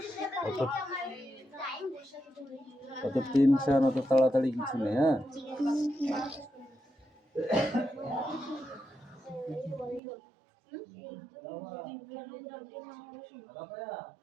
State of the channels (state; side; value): drops out; left; at 10.0 s